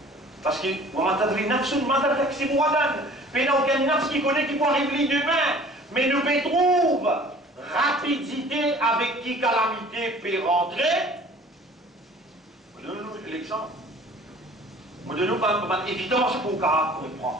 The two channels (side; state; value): both; normal; correlation 0.49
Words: parce que mais n'a aucun nafs qui connaît qui peut arriver demain, mais nous trouve rapidité avec qui calamité peut rentrer. Donnez-nous l'exemple. Donnez-nous une évidence pour comprendre.